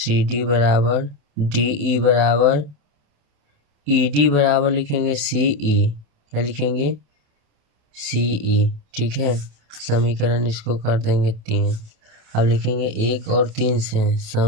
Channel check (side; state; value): left; late; 27 ms